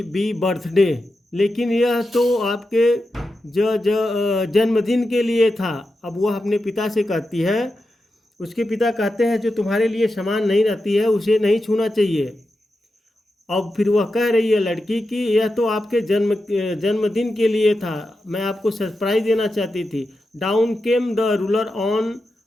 birthday, लेकिन यह तो आपके जन्मदिन के लिए था। अब वह अपने पिता से कहती है, उसके पिता कहते हैं जो तुम्हारे लिए सामान नहीं रहती है उसे नहीं छूना चाहिए। अब फिर वह कह रही है लड़की कि यह तो आपके जन्मदिन के लिए था, मैं आपको सरप्राइज देना चाहती थी। Down came the ruler on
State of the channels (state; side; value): normal; both; correlation 0.89